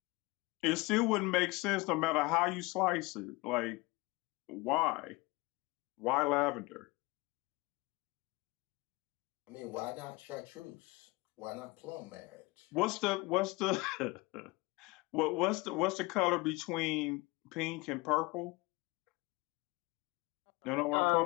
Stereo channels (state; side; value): quieter; right; 23.3 dB